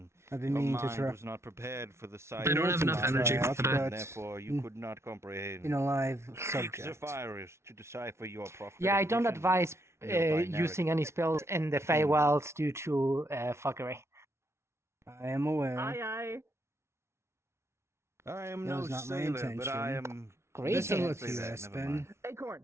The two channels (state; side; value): late; left; 0.13 ms